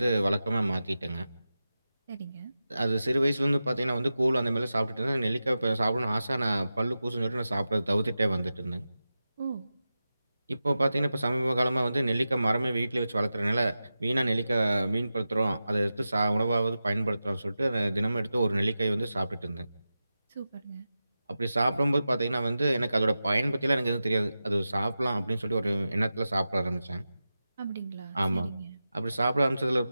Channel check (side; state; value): both; inverted; correlation -0.93